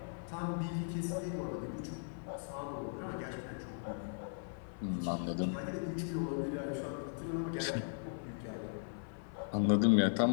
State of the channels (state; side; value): silent; right; 52 dB below the other